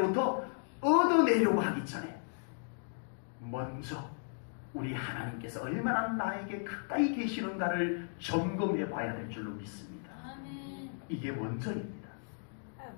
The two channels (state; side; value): silent; right; digital silence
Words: 얻어내려고 하기 전에 먼저 우리 하나님께서 얼마나 나에게 가까이 계시는가를 점검해 봐야 될 줄로 믿습니다. 이게 먼저입니다.